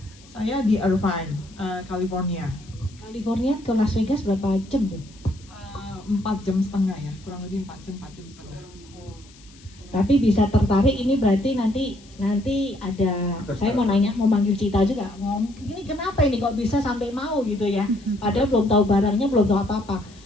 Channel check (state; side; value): noise; left; hiss, 25 dB below the sound